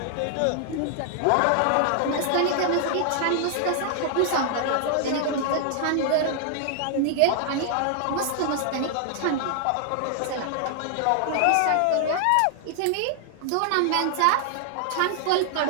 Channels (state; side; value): different; both; correlation -0.01